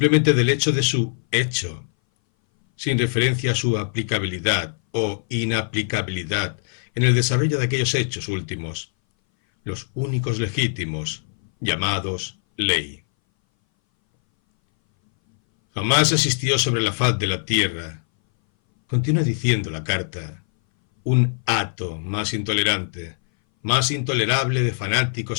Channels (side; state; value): right; silent; 60 dB below the other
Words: del hecho de su hecho, sin referencia a su aplicabilidad o inaplicabilidad en el desarrollo de aquellos hechos últimos, los únicos legítimos, llamados ley. Jamás existió sobre la faz de la tierra, continúa diciendo la carta, un hato más intolerante, más intolerable de